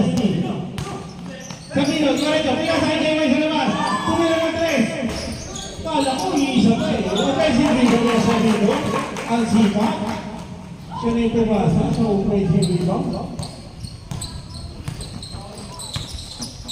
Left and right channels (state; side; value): identical; both; correlation 1.00